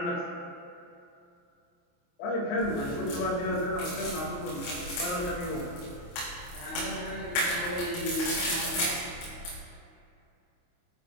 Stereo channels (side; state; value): right; late; 28 ms